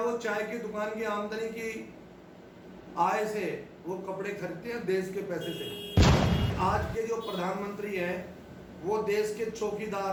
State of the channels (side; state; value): both; identical; correlation 1.00